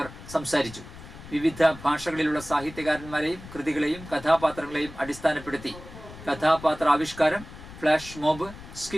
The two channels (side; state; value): left; noise; rumble, 15 dB below the sound